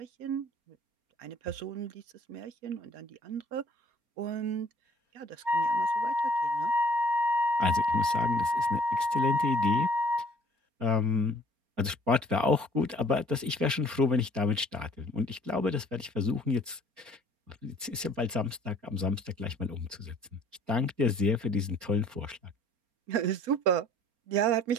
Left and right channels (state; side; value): late; left; 4.3 ms